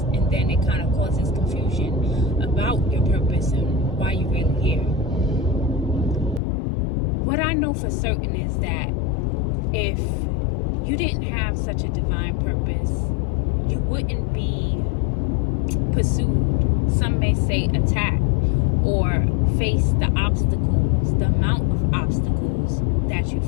and then it kind of causes confusion about your purpose and why you're really here. What I know for certain is that if you didn't have such a divine purpose, you wouldn't be pursued, some may say attacked, or face the obstacles, the amount of obstacles that you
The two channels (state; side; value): drops out; right; at 6.4 s